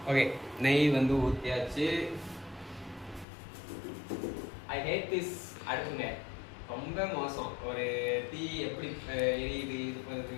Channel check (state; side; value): drops out; right; at 3.2 s